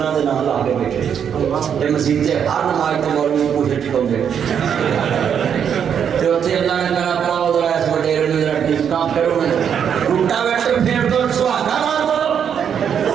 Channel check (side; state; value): left; quieter; 8.0 dB